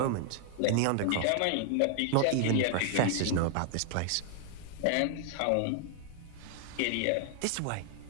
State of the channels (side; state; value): both; different; correlation 0.00